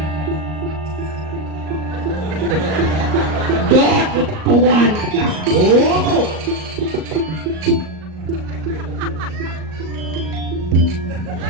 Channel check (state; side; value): late; left; 38 ms